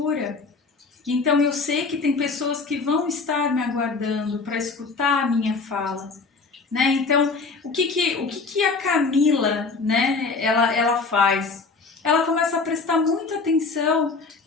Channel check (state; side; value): quieter; right; 4.3 dB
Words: então eu sei que tem pessoas que vão estar me aguardando para escutar a minha fala. Né? Então, o que a Camila, né, ela faz? Ela começa a prestar muita atenção